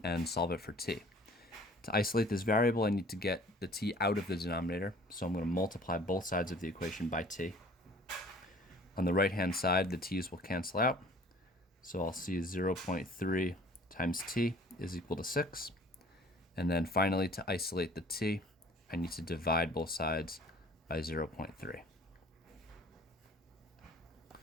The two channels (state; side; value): normal; both; correlation 0.51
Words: and solve it for t. To isolate this variable, I need to get the t out of the denominator, so I'm going to multiply both sides of the equation by t. On the right-hand side, the t's will cancel out, so I'll see 0.3 times t is equal to 6. And then finally, to isolate the t, I need to divide both sides by 0.3.